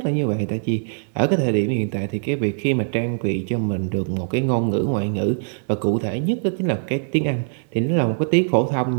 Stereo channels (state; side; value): silent; left; digital silence